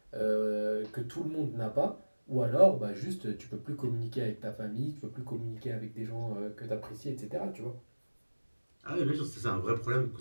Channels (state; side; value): inverted; both; correlation -1.00